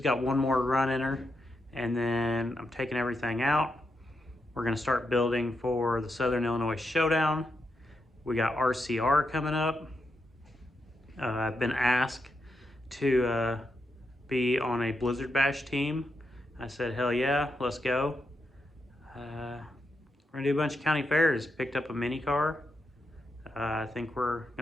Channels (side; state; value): both; normal; correlation 0.84